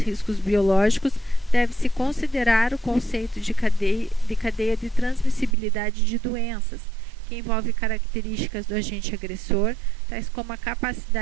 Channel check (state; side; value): drops out; left; at 5.6 s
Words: biológicos, deve-se considerar o conceito de cadeia de transmissibilidade de doenças, que envolve características do agente agressor, tais como a